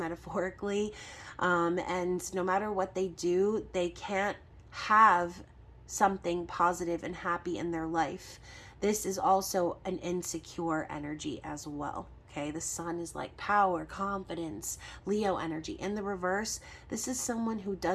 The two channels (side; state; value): both; identical; correlation 1.00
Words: and no matter what they do, they can't have something positive and happy in their life. This is also an insecure energy as well. Okay, the Sun is like power, confidence, Leo energy. In the reverse, this is someone who